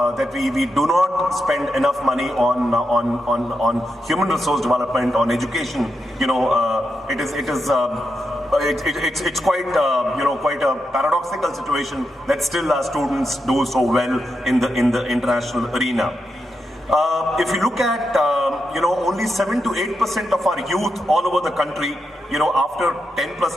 we do not spend enough money on human resource development, on education, it's quite quite a paradoxical situation that still our students do so well in the international arena. If you look at only 7 to 8% of our youth all over the country, after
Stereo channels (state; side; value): normal; both; correlation 0.85